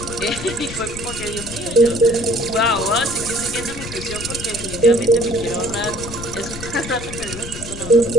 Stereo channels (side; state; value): left; noise; rumble, 11 dB below the sound